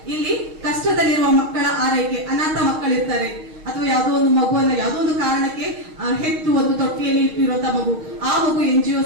ಇಲ್ಲಿ ಕಷ್ಟದಲ್ಲಿರುವ ಮಕ್ಕಳ ಆರೈಕೆ, ಅನಾಥ ಮಕ್ಕಳಿರ್ತಾರೆ ಅಥವಾ ಯಾವುದೋ ಒಂದು ಮಗುವನ್ನ ಯಾವುದೋ ಒಂದು ಕಾರಣಕ್ಕೆ ಹೆತ್ತು ಒಂದು ತೊಟ್ಟಿಯಲ್ಲಿ ಇಟ್ಟಿರುವಂತಹ ಮಗು, ಆ ಮಗು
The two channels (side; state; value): left; late; 6.4 ms